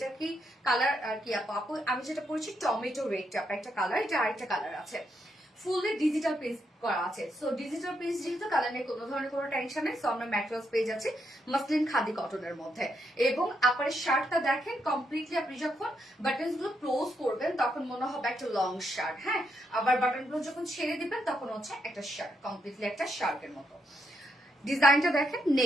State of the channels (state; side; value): normal; both; correlation 0.79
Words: কি কালার কি আপু? আমি যেটা পড়ছি টমেটো রেড একটা কালার, এটা আরেকটা কালার আছে। ফুললি ডিজিটাল প্রিন্ট করা আছে, সো ডিজিটাল প্রিন্ট যেহেতু কালার নেই, কোনো ধরনের কোনো টেনশন নেই। সো আমরা ম্যাটেরিয়ালস পেয়ে যাচ্ছি মাসলিন খাদি কটনের মধ্যে। এবং আপনার শার্টটা দেখেন কমপ্লিটলি, আপনি যখন বাটনস গুলো ক্লোজ করবেন তখন মনে হবে একটা লং শার্ট। হ্যাঁ, আবার বাটন গুলো যখন ছেড়ে দিবেন তখন হচ্ছে একটা শার্ট, কমপ্লিটলি একটা শার্টের মতো। ডিজাইনটা দেখেন,